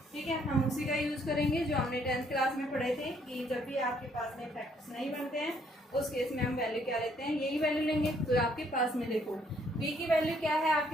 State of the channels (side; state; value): both; normal; correlation 0.67